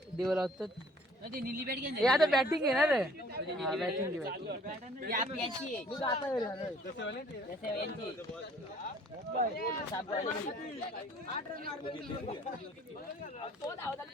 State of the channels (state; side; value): normal; both; correlation 0.55